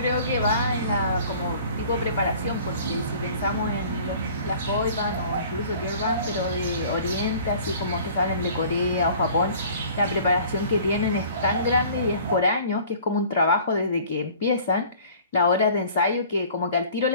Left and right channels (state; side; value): inverted; both; correlation -0.49